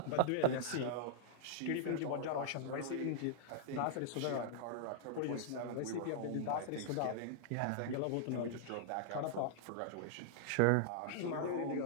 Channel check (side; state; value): both; different; correlation -0.02